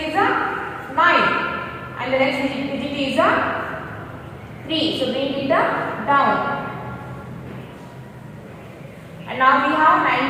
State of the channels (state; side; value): identical; both; correlation 1.00